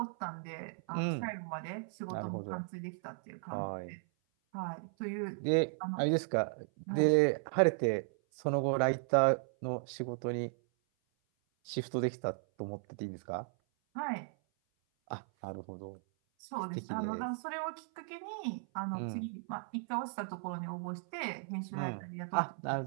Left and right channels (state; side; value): silent; left; 54 dB below the other